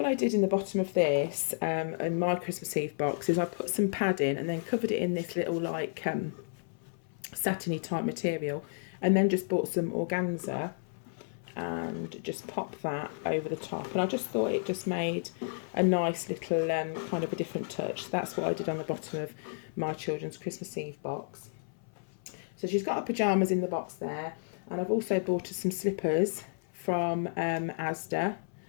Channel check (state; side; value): silent; right; 56 dB below the other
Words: I did in the bottom of this, in my Christmas Eve box, is I put some padding and then covered it in this little, like, satiny type material, and then just bought some organza and just popped that over the top. And I just thought it just made a nice little kind of a different touch. So that's what I did on the bottom of my children's Christmas Eve box. So she's got her pyjamas in the box there, and I've also bought her some slippers from Asda.